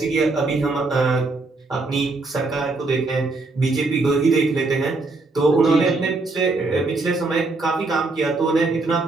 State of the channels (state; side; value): quieter; left; 3.5 dB